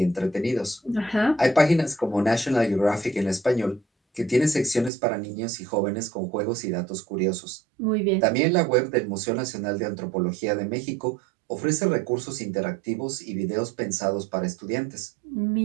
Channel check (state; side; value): drops out; left; at 4.9 s